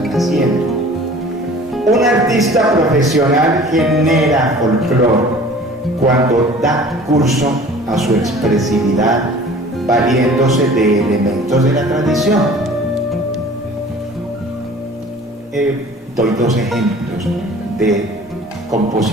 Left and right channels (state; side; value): normal; both; correlation 0.46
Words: naciendo. Un artista profesional genera folclore cuando da curso a su expresividad valiéndose de elementos de la tradición. Doy dos ejemplos de